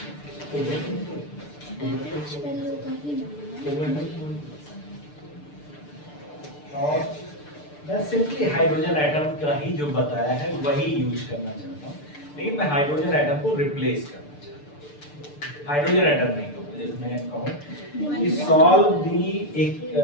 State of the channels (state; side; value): late; right; 6.8 ms